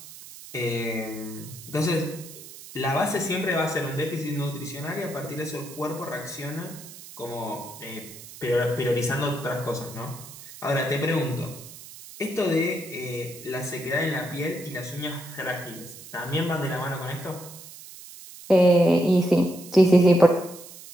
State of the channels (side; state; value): right; noise; hiss, 16 dB below the sound